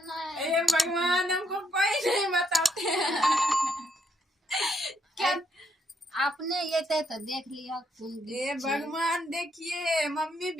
ए भगवान, हमको कोई नहीं बताते हैं। क्या आपने ये तो देख लिया। ए भगवान, देखिए मम्मी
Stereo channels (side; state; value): both; normal; correlation 0.74